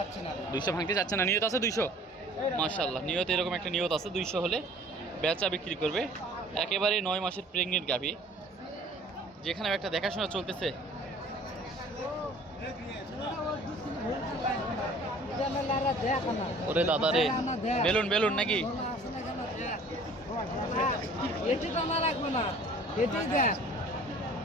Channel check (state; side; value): normal; both; correlation 0.50